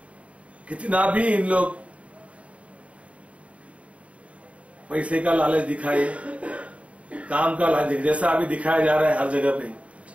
कितना भी इन लोग पैसे का लालच दिखाए, काम का लालच, जैसा अभी दिखाया जा रहा है हर जगह पे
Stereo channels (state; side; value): late; left; 0.064 ms